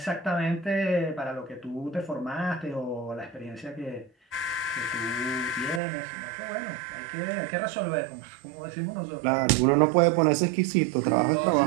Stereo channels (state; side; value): drops out; left; at 5.8 s